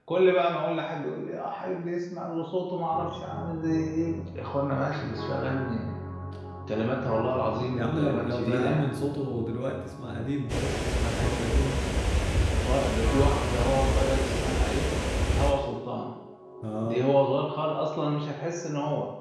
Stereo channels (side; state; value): both; identical; correlation 1.00